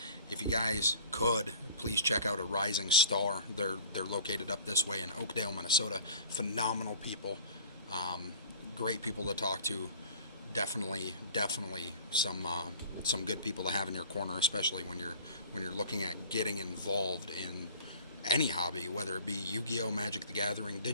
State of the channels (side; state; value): both; inverted; correlation -0.45